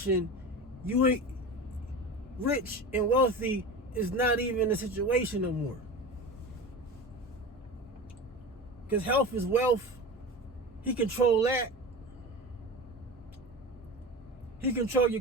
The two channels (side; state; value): both; normal; correlation 0.30